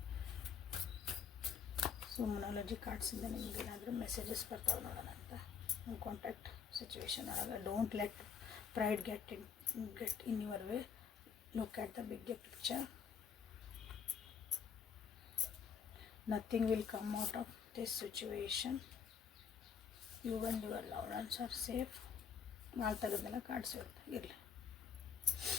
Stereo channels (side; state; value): right; quieter; 6.8 dB